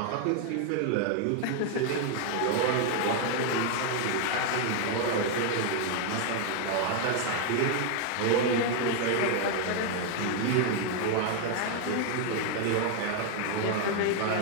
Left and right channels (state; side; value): different; both; correlation 0.00